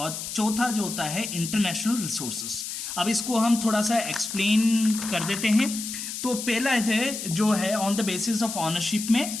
चौथा जो होता है इंटरनेशनल रिसोर्सेज। अब इसको हम थोड़ा सा एक्सप्लेन कर देते हैं। तो पहला है जो है on the basis of ownership में,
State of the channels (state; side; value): noise; left; hiss, 6 dB below the sound